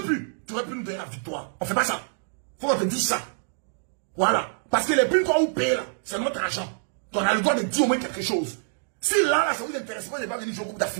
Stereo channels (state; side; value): silent; left; digital silence